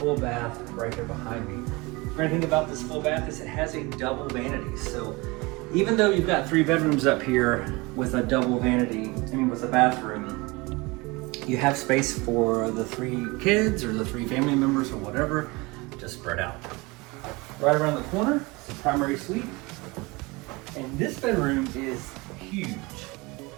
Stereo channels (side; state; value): left; quieter; 24.5 dB